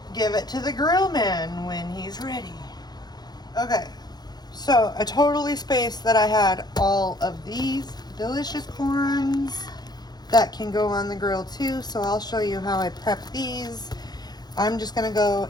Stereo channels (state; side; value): late; right; 0.20 ms